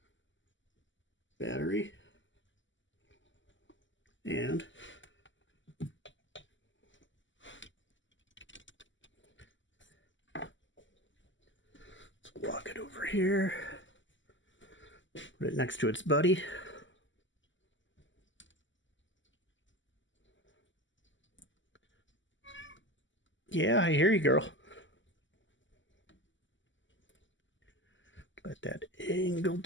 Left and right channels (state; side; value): late; right; 0.55 ms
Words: battery. And let's walk it over here. Put it next to its buddy. Yeah, I hear you, girl. Let that angle